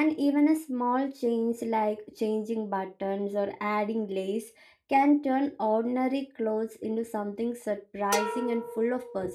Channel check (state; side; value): identical; both; correlation 1.00